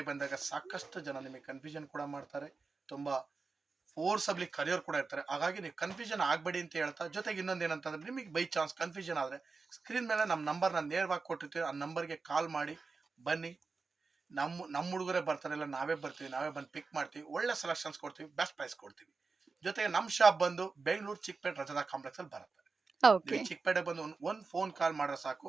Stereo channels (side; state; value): left; quieter; 4.3 dB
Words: ಬಂದಾಗ ಸಾಕಷ್ಟು ಜನ ನಿಮಗೆ ಕನ್ಫ್ಯೂಷನ್ ಕೂಡ ಮಾಡ್ತಾರೆ, ತುಂಬಾ ಫೋರ್ಸಬ್ಲಿ ಕರಿಯೋರು ಕೂಡ ಇರ್ತಾರೆ. ಹಾಗಾಗಿ ನೀವು ಕನ್ಫ್ಯೂಷನ್ ಆಗಬೇಡಿ ಅಂತ ಹೇಳ್ತಾ, ಜೊತೆಗೆ ಇನ್ನೊಂದು ಏನಂತಂದ್ರೆ, ನಿಮಗೆ ಬೈ ಚಾನ್ಸ್ ಕನ್ಫ್ಯೂಷನ್ ಆದರೆ ಸ್ಕ್ರೀನ್ ಮೇಲೆ ನಮ್ಮ ನಂಬರ್ನ ನೇರವಾಗಿ ಕೊಟ್ಟಿರ್ತೀವಿ. ಆ ನಂಬರ್ಗೆ ಕಾಲ್ ಮಾಡಿ ಬನ್ನಿ. ನಮ್ಮ ಹುಡುಗರೇ ಬರ್ತಾರೆ, ಇಲ್ಲ ನಾವೇ ಬರ್ತೀವಿ, ನಾವೇ ಬಂದು ಪಿಕ್ ಮಾಡ್ತೀವಿ, ಒಳ್ಳೆ ಸೆಲೆಕ್ಷನ್ಸ್ ಕೊಡ್ತೀವಿ, ಬೆಸ್ಟ್ ಪ್ರೈಸ್ ಕೊಡ್ತೀವಿ. ಜೊತೆಗೆ ನಮ್ಮ ಶಾಪ್ ಬಂದು ಬೆಂಗಳೂರು ಚಿಕ್ಕಪೇಟೆ ರಜದಾ ಕಾಂಪ್ಲೆಕ್ಸ್ ಅಲ್ಲಿ ಬರುತ್ತೆ. ಓಕೆ. ನೀವು ಚಿಕ್ಕಪೇಟೆ ಬಂದು ಒಂದು ಫೋನ್ ಕಾಲ್ ಮಾಡ್ರೆ ಸಾಕು,